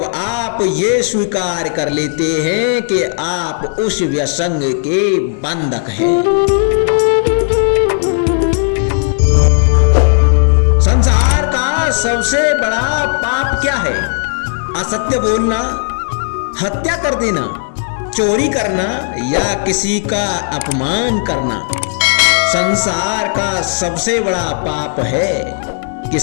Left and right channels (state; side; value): silent; right; 67 dB below the other